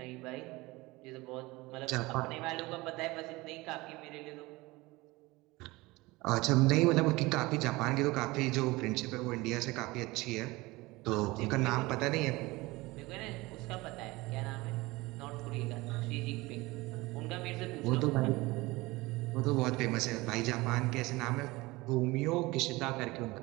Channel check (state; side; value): quieter; left; 21.5 dB